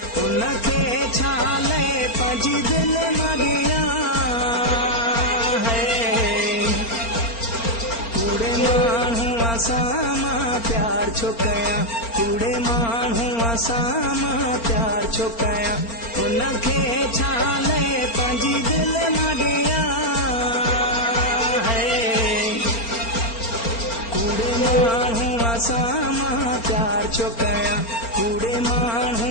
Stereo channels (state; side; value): late; right; 4.4 ms